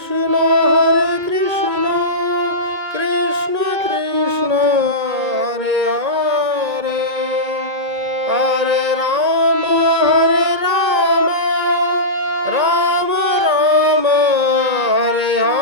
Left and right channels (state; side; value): late; left; 2.3 ms